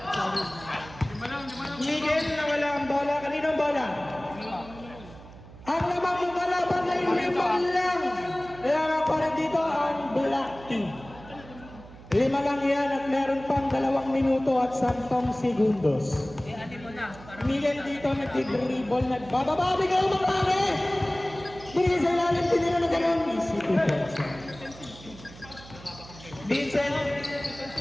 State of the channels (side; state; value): right; noise; hum, 18 dB below the sound